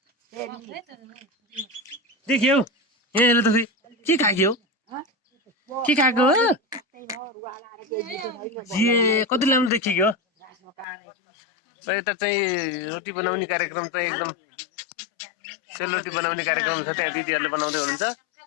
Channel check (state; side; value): drops out; right; at 10.9 s